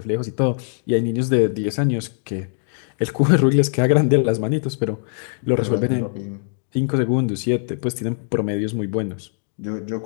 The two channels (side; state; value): right; silent; 65 dB below the other